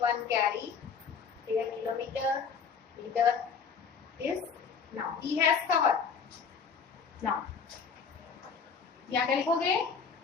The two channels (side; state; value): right; quieter; 6.0 dB